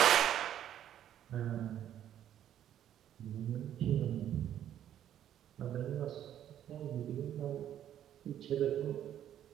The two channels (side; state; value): left; quieter; 10.8 dB